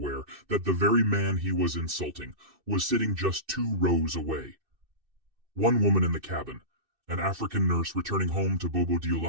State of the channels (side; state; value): left; late; 2.6 ms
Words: that the very man he was insulting was sitting just 2 rows away. One woman in the cabin, An African nurse returning home to Bobo